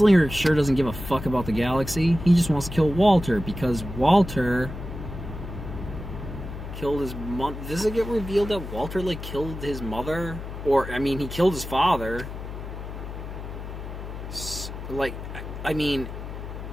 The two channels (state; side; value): noise; left; hum, 9 dB below the sound